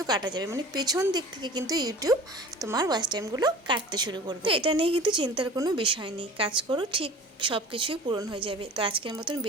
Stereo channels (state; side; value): normal; both; correlation 0.41